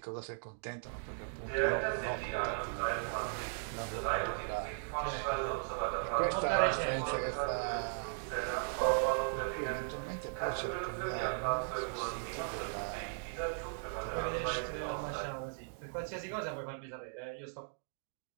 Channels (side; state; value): left; silent; digital silence